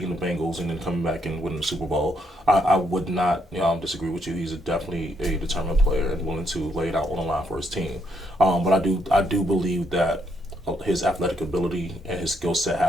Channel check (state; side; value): normal; both; correlation 0.74